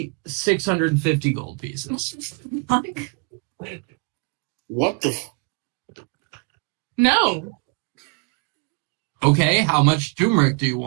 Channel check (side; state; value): left; quieter; 32.3 dB